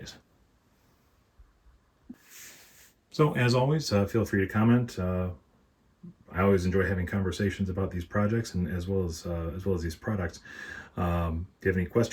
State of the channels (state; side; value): identical; both; correlation 1.00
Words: So as always, feel free to comment. I always enjoy having conversations about these projects and as well as these products. If you have any